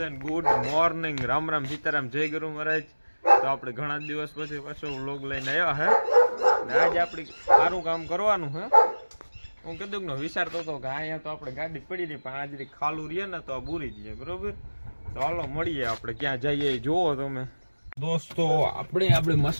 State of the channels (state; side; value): inverted; both; correlation -1.00